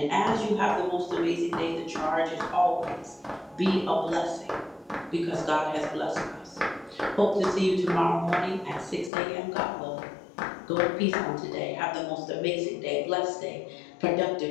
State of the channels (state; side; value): drops out; right; at 9.1 s